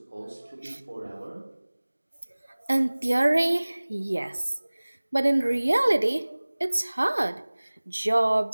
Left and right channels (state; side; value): inverted; both; correlation -1.00